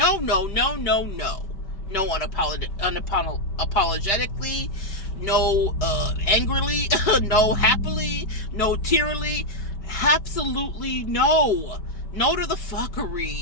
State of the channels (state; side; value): late; right; 5.1 ms